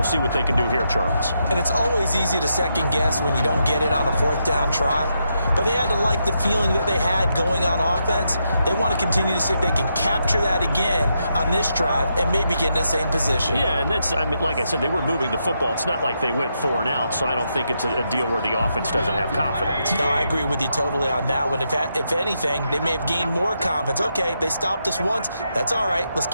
see what they can do here, Charles. And it's always easy to second guess when you don't get it on a 4th down try. But they had to like the feeling that they had going on offense. They want to continue to see if they can capture that again on this drive and maybe get in the same position. Yeah, and that's, I mean, like I said, they were moving the football. It's not like they went 4 and out, so I don't think it's a deal where the offense doesn't have confidence. No, I agree with you totally on that one. If anything, they may have gained more confidence. Okay, they stopped us once. That's all right. Let's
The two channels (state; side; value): inverted; both; correlation -0.82